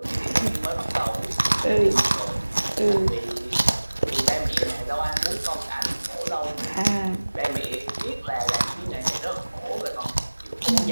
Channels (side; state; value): both; inverted; correlation -1.00